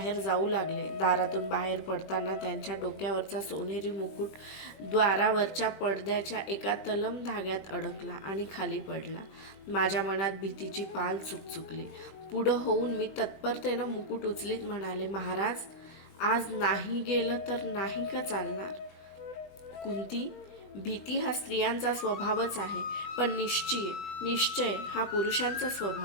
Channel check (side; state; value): right; late; 20 ms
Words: जाऊ लागले. दारातून बाहेर पडताना त्यांच्या डोक्यावरचा सोनेरी मुकुट द्वारावरच्या पडद्याच्या एका तलम धाग्यात अडकला आणि खाली पडला. माझ्या मनात भीतीची पाल चुकचुकली. पुढं होऊन मी तत्परतेनं मुकुट उचलीत म्हणाले, महाराज आज नाही गेलं तर नाही का चालणार? कुंती, भीती हा स्त्रियांचा स्वभावच आहे, पण निश्चय हा पुरुषांचा